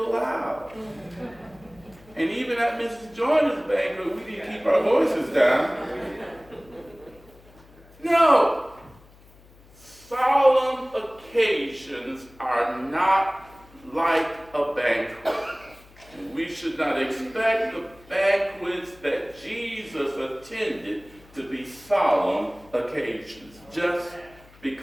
loud. And even at Mrs. Joyner's banquet, we didn't keep our voices down. No. Solemn occasions are not like a banquet. And we should not expect the banquets that Jesus attended to be solemn occasions, just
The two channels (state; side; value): noise; left; hum, 25 dB below the sound